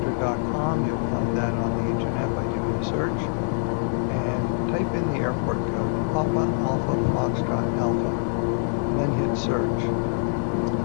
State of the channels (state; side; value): silent; right; 60 dB below the other